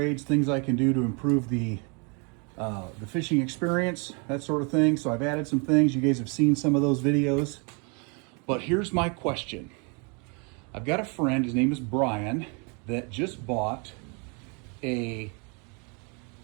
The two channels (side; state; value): left; quieter; 34.0 dB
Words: things I can do to improve the fishing experience, that sort of thing. So I've added some things. You guys have seen some of those videos. But here's my question. I've got a friend, his name is Brian, that just bought a